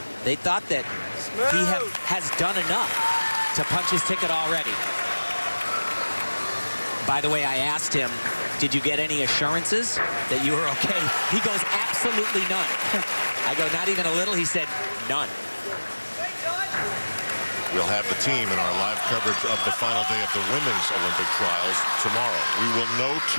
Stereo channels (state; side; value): inverted; both; correlation -1.00